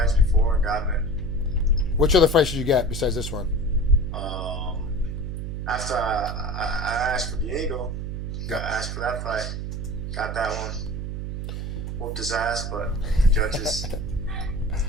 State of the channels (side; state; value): right; noise; hum, 4 dB below the sound